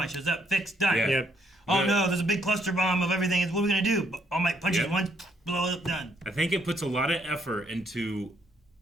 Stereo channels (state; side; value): normal; both; correlation 0.71